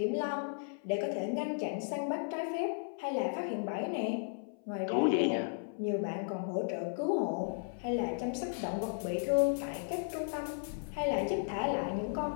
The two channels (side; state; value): right; silent; 54 dB below the other